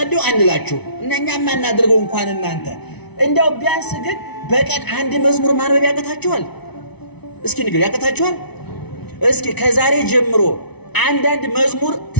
አንላችሁ እኛም ማናደርገው እንኳን እናንተ እንደው ቢያንስ ግን በቀን አንድ መዝሙር ማንበብ ያቀታችኋል? እስኪ ንገሩ ያቀታችኋል? እስኪ ከዛሬ ጀምሮ አንዳንድ መዝሙር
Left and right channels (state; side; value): late; right; 0.99 ms